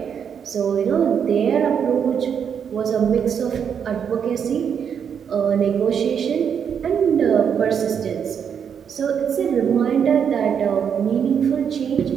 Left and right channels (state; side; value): quieter; left; 7.6 dB